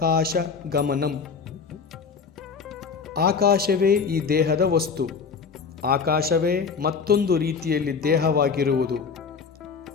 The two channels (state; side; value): quieter; right; 5.6 dB